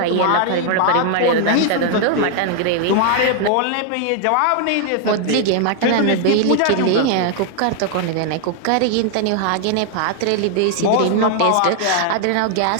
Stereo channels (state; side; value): different; both; correlation 0.00